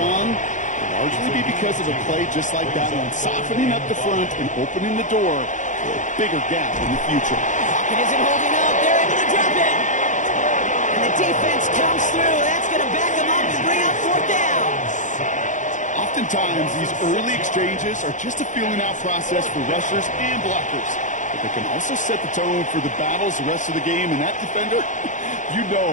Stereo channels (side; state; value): right; late; 0.36 ms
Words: it'll largely be because of a play just like that one, softening up the front and opening the door for a bigger gap in the future. Pocket isn't holding up. They're able to drop it. And the defense comes through. That's going to back them up and bring up 4th down. Oftentimes, these early exchanges are just a feeling-out process for rushers and blockers. But they can also set the tone for the battles the rest of the game, and that defender, you